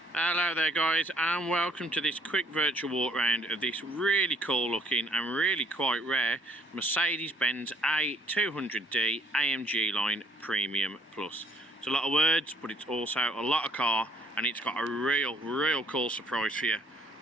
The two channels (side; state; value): both; normal; correlation 0.62